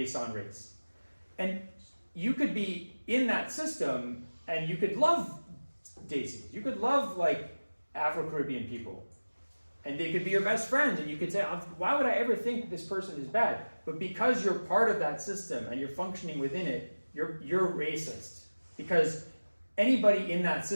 on race. And you could be in that system and you could love Daisy. You could love like Afro-Caribbean people. And they could be your best friends, and you could say, why would I ever think this person is bad? But because you're part of that system and you're functioning within it, you're racist. Because anybody in that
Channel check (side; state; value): both; inverted; correlation -1.00